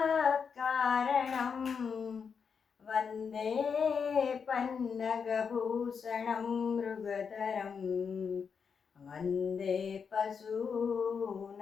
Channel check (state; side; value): quieter; right; 6.2 dB